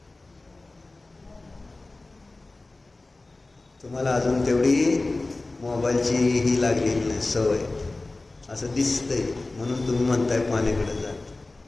तुम्हाला अजून तेवढी मोबाईलची ही लागलेली नाही सवय, असं दिसतंय म्हणून तुम्ही म्हणताय पाण्याकडे जात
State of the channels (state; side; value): quieter; right; 3.1 dB